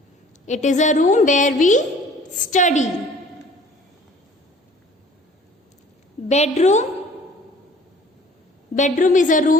it is a room where we study. Bedroom. Bedroom is a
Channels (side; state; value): both; normal; correlation 0.52